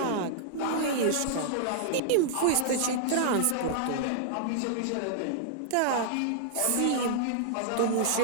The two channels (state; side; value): different; both; correlation -0.01